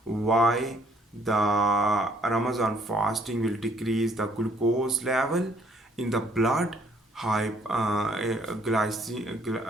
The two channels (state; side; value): normal; both; correlation 0.64